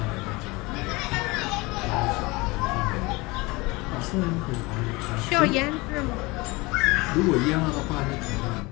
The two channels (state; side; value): quieter; right; 23.9 dB